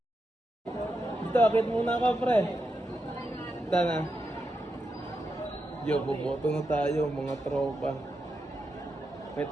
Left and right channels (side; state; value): both; normal; correlation 0.86